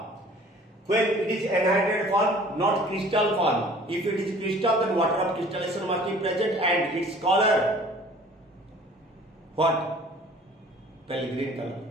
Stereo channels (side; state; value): both; normal; correlation 0.50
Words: When it is anhydrated form, not crystal form. If it is crystal, then water of crystallization must be present and its color what? Pale green color,